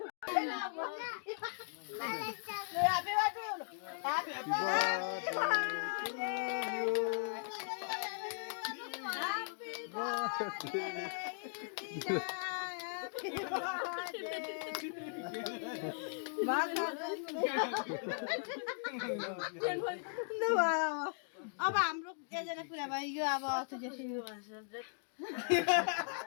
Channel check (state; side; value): silent; right; digital silence